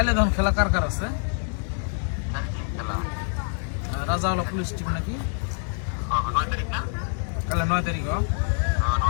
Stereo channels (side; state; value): right; silent; 60 dB below the other